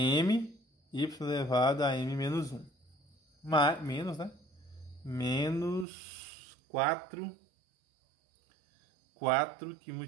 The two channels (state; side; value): drops out; left; at 5.9 s